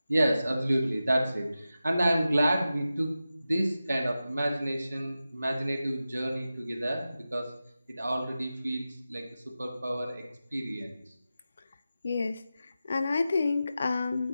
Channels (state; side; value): inverted; both; correlation -0.93